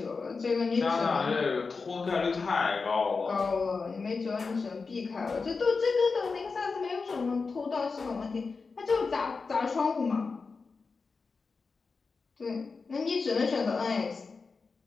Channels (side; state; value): right; quieter; 4.6 dB